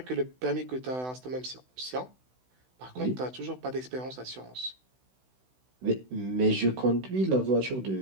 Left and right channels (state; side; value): late; left; 16 ms